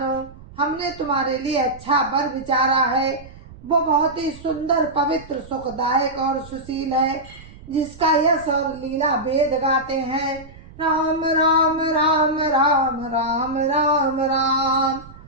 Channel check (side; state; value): right; noise; rumble, 19 dB below the sound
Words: हमने तुम्हारे लिए अच्छा वर विचारा है। वो बहुत ही सुंदर पवित्र सुखदायक और सुशील है, जिसका यश और लीला वेद गाते हैं। राम राम राम राम राम राम राम।